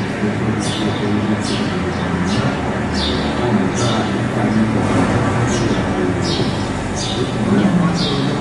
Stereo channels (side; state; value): both; identical; correlation 1.00